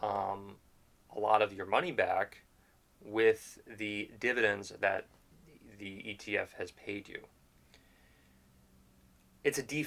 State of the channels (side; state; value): both; identical; correlation 1.00